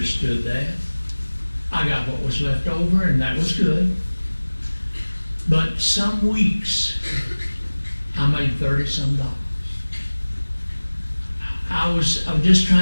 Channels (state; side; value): inverted; both; correlation -1.00